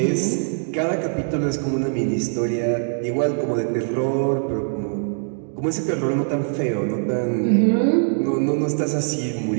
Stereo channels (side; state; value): left; silent; digital silence